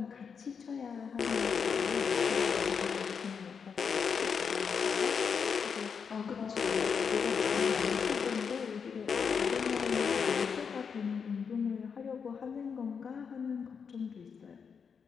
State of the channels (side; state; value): right; quieter; 6.3 dB